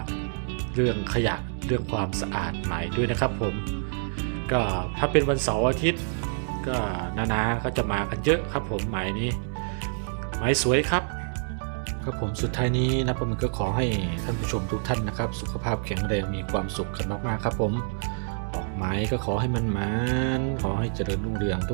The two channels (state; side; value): silent; left; digital silence